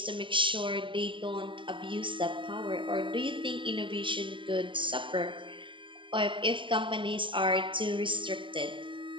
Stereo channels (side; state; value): left; late; 0.24 ms